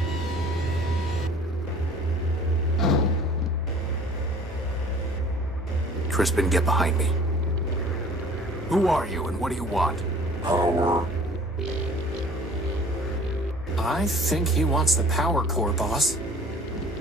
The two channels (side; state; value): both; normal; correlation 0.49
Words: Crispin, get behind me. Who are you and what do you want? Power. I think he wants the power core, boss.